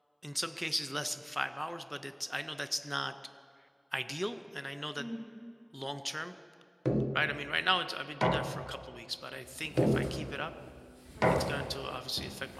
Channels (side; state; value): both; identical; correlation 1.00